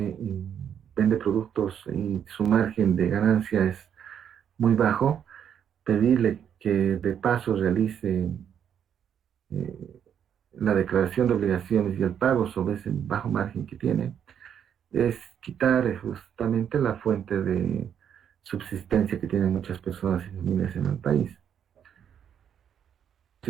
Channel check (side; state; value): left; quieter; 8.7 dB